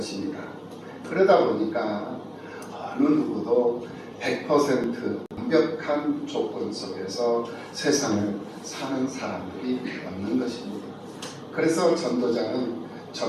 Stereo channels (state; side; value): identical; both; correlation 1.00